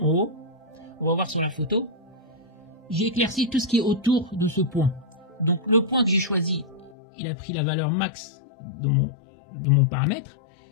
haut, on va voir sur la photo, j'ai éclairci tout ce qui est autour de ce point. Donc le point que j'ai choisi, il a pris la valeur max de mon paramètre,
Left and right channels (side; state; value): right; drops out; at 7.0 s